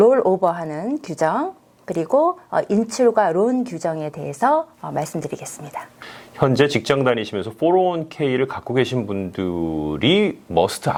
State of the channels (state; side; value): identical; both; correlation 1.00